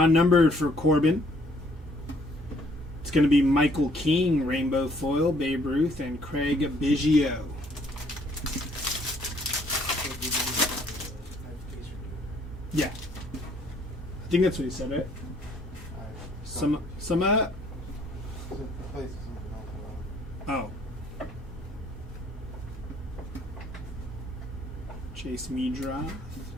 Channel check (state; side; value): normal; both; correlation 0.63